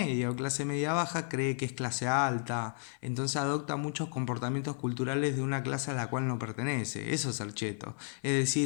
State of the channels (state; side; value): silent; right; digital silence